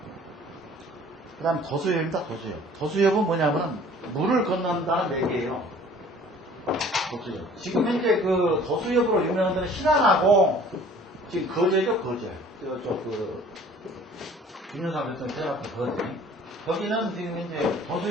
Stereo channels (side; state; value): both; normal; correlation 0.51